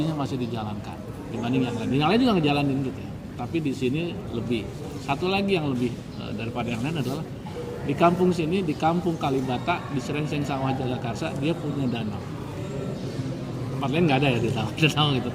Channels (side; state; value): both; identical; correlation 1.00